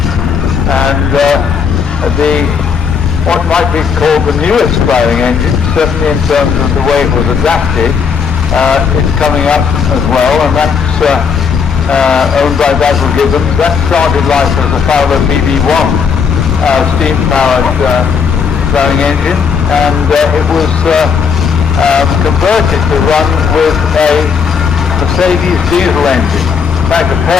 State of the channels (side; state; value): right; quieter; 6.2 dB